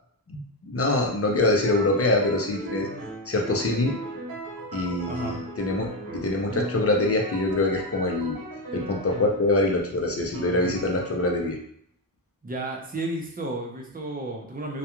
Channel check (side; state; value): both; normal; correlation 0.09